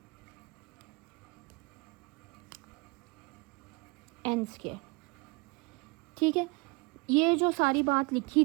n², ठीक है। ये जो सारी बात लिखी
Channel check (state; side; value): quieter; left; 28.4 dB